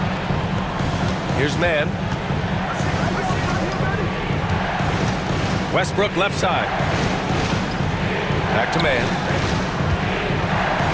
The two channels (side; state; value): both; identical; correlation 1.00